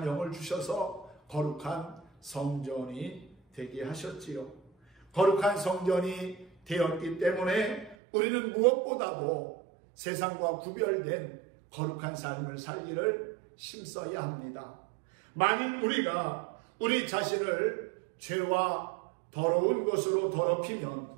영을 주셔서 거룩한 성전이 되게 하셨지요. 거룩한 성전이 되었기 때문에 우리는 무엇보다도 세상과 구별된 거룩한 삶을 살기를 힘써야 합니다. 만일 우리가 우리 자신을 죄와 더러운 것으로 더럽히면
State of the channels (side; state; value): left; drops out; at 8.0 s